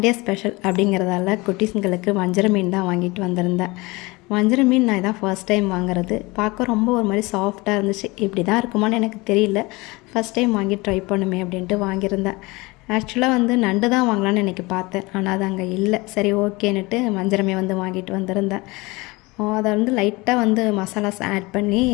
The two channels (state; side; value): quieter; right; 23.6 dB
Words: special அப்படிங்கிறதால குட்டீஸுங்களுக்கு வஞ்சர மீன் தான் வாங்கிட்டு வந்திருந்தேன். வஞ்சர மீன் நான் இதான் ஃபர்ஸ்ட் டைம் வாங்குறது. பார்க்க ரொம்ப ஒரு மாதிரி சாஃப்டாக இருந்துச்சு. இப்படி தான் இருக்குமான்னு எனக்கு தெரியல. ஃபஸ்ட் டைம் வாங்கி ட்ரை பண்ணுமே அப்படின்ட்டு வாங்கியிருந்தேன். ஆக்சுவலாக நண்டு தான் வாங்கலான்னு இன்றைக்கி பார்த்தேன். ஆனால் அது அங்கே இல்லை. சரி ஓகேன்னுட்டு வஞ்சரமே வாங்கிட்டு வந்திருந்தேன். அதை லைட்டாக மசாலாஸ் ஆட் பண்ணி